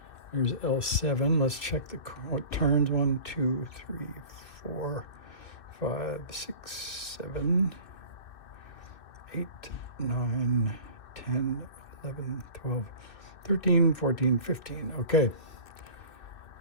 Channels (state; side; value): late; right; 2.6 ms